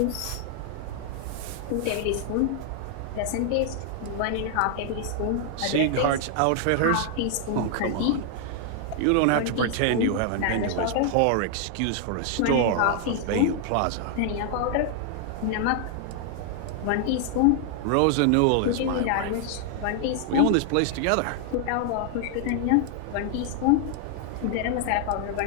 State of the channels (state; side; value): different; both; correlation 0.00